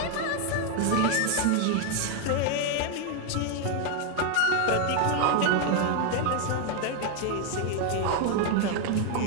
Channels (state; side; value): different; both; correlation 0.01